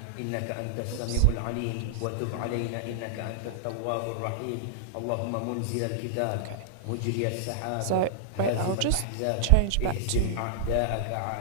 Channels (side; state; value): both; different; correlation -0.01